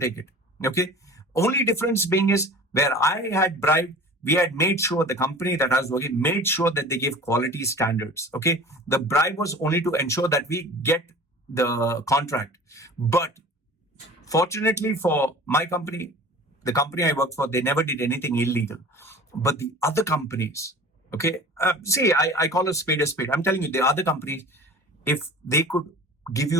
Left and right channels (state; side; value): normal; both; correlation 0.40